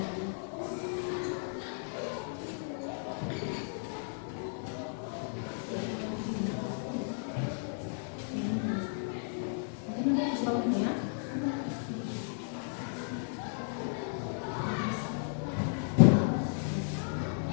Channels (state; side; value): silent; right; digital silence